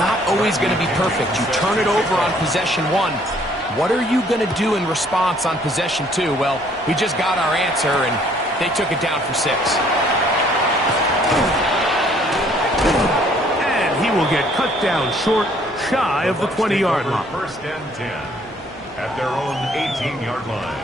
not always going to be perfect. You turn it over on possession 1. What are you going to do in response on possession 2? Well, we just got our answer, and they took it down for 6. And he will get cut down short, shy of the 20-yard line. First and 10 at their own 18-yard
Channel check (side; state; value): both; normal; correlation 0.62